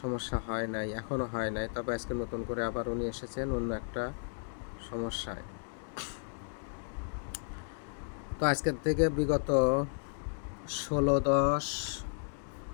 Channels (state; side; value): silent; right; digital silence